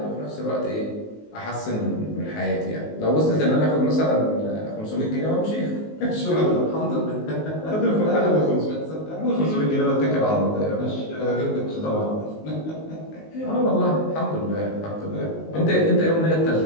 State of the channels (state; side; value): late; right; 19 ms